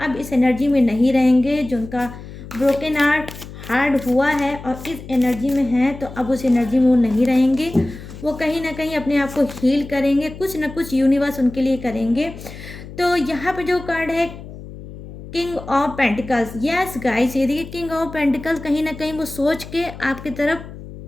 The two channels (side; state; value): left; noise; hum, 14 dB below the sound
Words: अब इस एनर्जी में नहीं रहेंगे, जो उनका ब्रोकन हार्ट हुआ है और इस एनर्जी में है, तो अब उस एनर्जी में वो नहीं रहेंगे। वो कहीं ना कहीं अपने आप को हील करेंगे, कुछ ना कुछ यूनिवर्स उनके लिए करेंगे। तो यहाँ पे जो कार्ड है king of pentacles, yes guys, ये देखिए किंग ऑफ पेंटिकल्स, कहीं ना कहीं वो सोच के आपकी तरफ